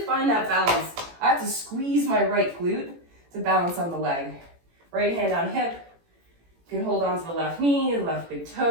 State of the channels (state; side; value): late; left; 18 ms